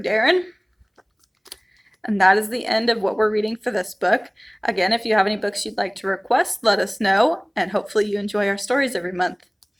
Darren. And that is the end of what we're reading for this book. Again, if you have any books you'd like to request, let us know, and hopefully you enjoy our stories every month.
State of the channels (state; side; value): identical; both; correlation 1.00